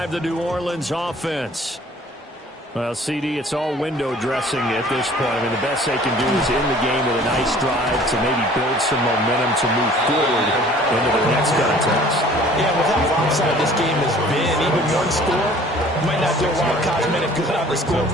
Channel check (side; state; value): both; normal; correlation 0.51